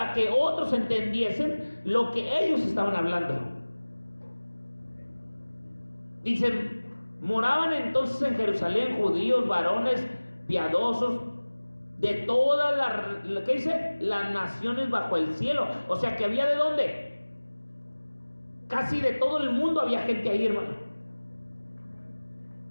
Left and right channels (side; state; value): both; inverted; correlation -1.00